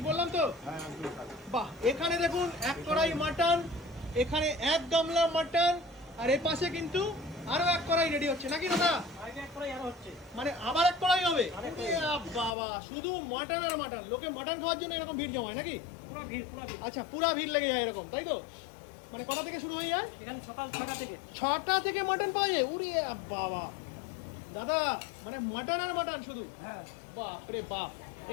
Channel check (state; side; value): drops out; right; at 12.6 s